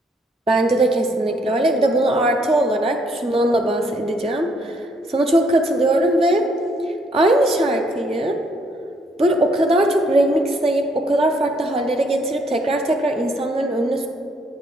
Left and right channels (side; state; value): both; normal; correlation 0.68